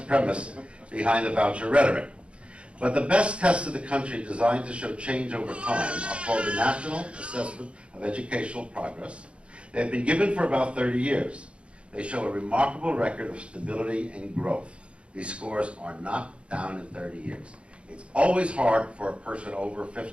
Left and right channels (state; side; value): late; left; 0.059 ms